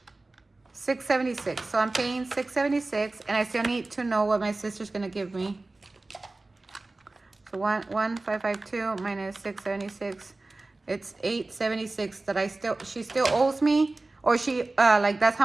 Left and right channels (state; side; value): quieter; left; 3.1 dB